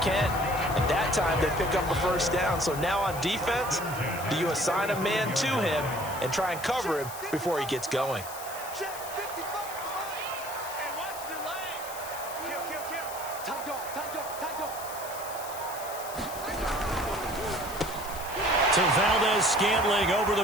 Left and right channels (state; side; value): noise; left; hiss, 12 dB below the sound